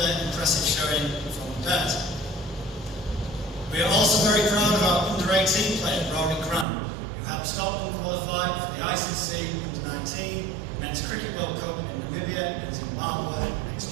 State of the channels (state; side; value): drops out; left; at 6.7 s